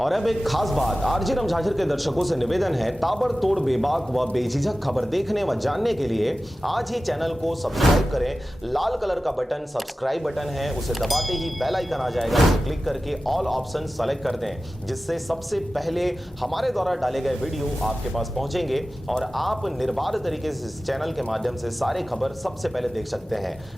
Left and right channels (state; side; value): normal; both; correlation 0.95